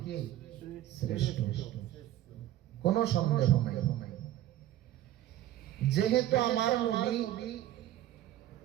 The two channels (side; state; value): left; quieter; 13.4 dB